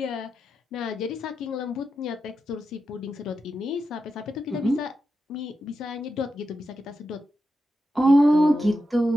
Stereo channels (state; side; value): normal; both; correlation 0.88